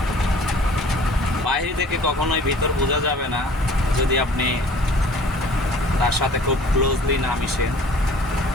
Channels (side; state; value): both; normal; correlation 0.50